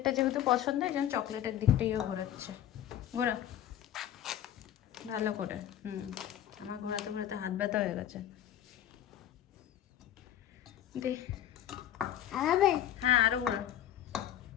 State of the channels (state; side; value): quieter; right; 11.3 dB